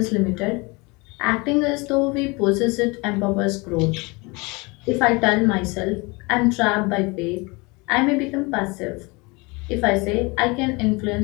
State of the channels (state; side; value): quieter; right; 26.6 dB